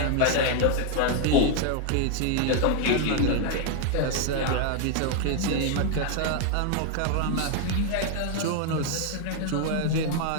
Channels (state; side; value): different; both; correlation 0.00